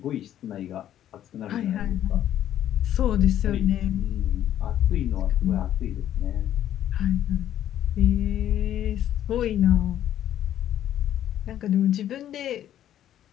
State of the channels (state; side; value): quieter; right; 11.4 dB